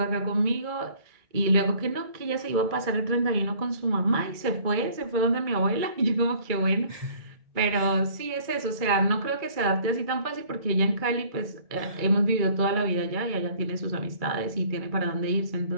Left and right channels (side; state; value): left; late; 2.3 ms